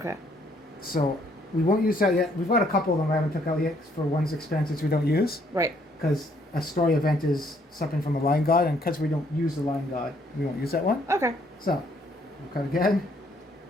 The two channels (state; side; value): normal; both; correlation 0.67